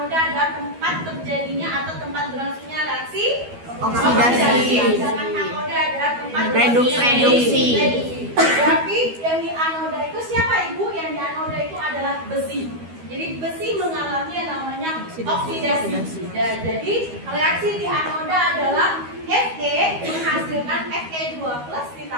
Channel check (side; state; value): left; late; 12 ms